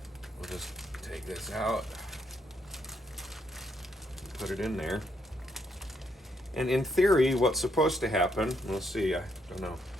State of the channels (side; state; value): both; normal; correlation 0.75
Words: We'll just take this out and put it in there. And in theory, what's supposed to happen, we'll see, I don't know.